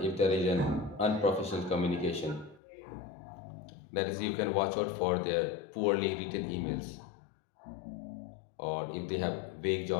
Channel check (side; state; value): right; drops out; at 2.6 s